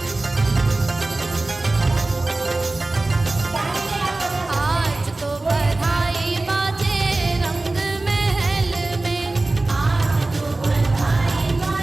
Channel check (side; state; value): left; quieter; 3.0 dB